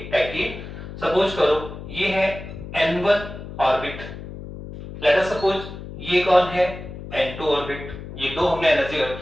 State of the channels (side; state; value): left; noise; hum, 11 dB below the sound